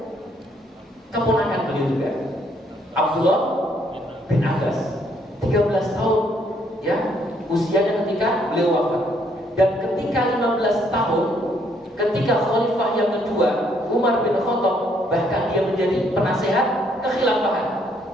Keponakan beliau juga, Abdullah bin Abbas. 13 tahun ya usianya ketika beliau wafat. Dan ketika 15 tahun, ketika khalifah yang kedua Umar bin Khattab, bahkan dia menjadi penasehat kekhilafahan.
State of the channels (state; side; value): normal; both; correlation 0.69